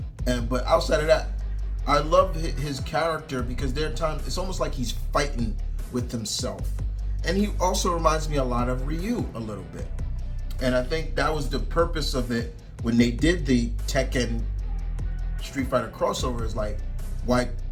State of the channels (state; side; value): identical; both; correlation 1.00